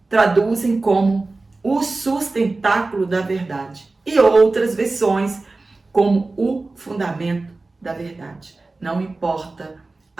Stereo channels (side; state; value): left; quieter; 3.4 dB